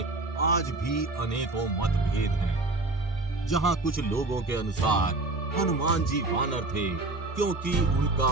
आज भी अनेकों मतभेद हैं। जहां कुछ लोगों के अनुसार हनुमान जी वानर थे क्योंकि उनका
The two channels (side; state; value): left; quieter; 3.0 dB